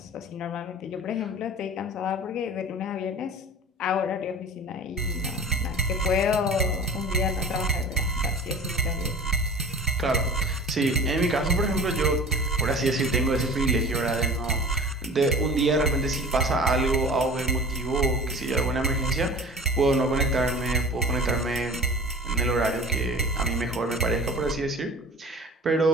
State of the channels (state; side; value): normal; both; correlation 0.40